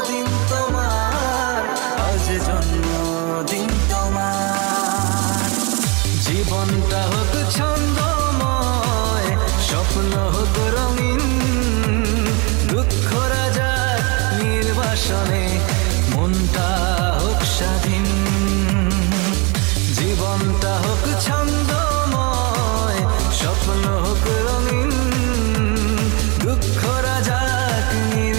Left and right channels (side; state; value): left; quieter; 30.5 dB